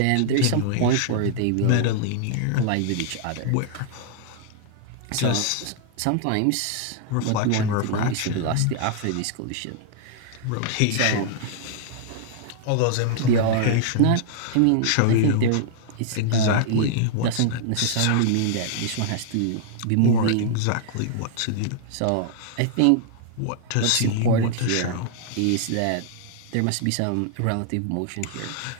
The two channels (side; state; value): both; different; correlation -0.01